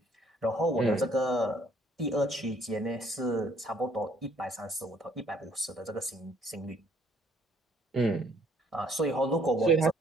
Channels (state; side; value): normal; both; correlation 0.63